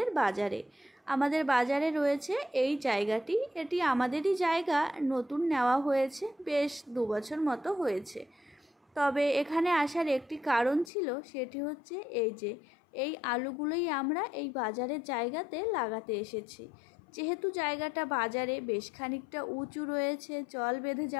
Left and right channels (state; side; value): drops out; right; at 10.9 s